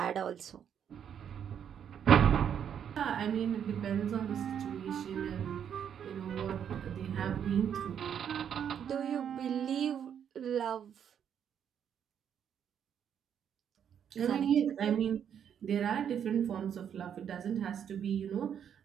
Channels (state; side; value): quieter; left; 8.6 dB